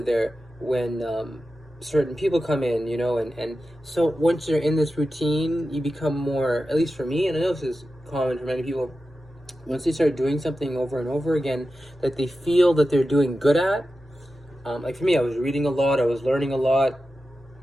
when certain people come in, and so once you're in this routine, you become more, at least for me, and I know this is common for many people, once they start doing something over and over again that they feel that they're doing good at, like for me, I was reading a lot, I was learning a lot,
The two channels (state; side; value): normal; both; correlation 0.92